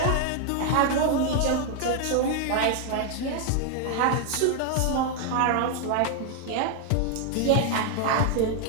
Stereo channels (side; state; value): both; different; correlation 0.00